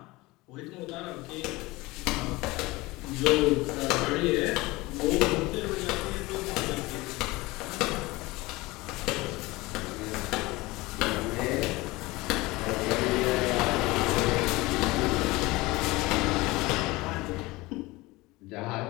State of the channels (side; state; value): right; quieter; 21.3 dB